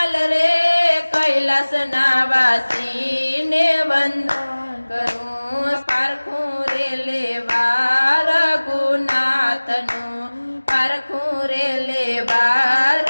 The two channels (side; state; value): both; inverted; correlation -1.00